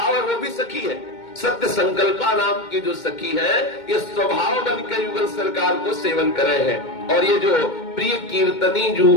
है वो भी सखी है। सत्य संकल्पा नाम की जो सखी है, ये स्वभाव बन के युगल सरकार को सेवन करे हैं। और ये जो प्रिय कीर्तनी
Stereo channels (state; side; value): late; right; 2.2 ms